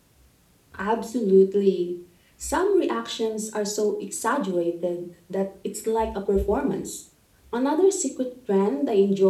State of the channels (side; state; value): both; identical; correlation 1.00